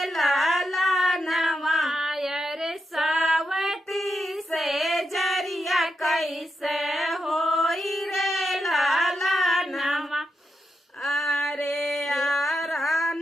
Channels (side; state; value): both; normal; correlation 0.85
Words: लाला नवायर सावती से जरिया कैसे होई रे लाला नवा अरे